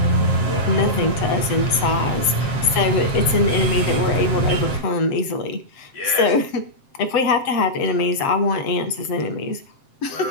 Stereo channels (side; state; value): right; late; 7.6 ms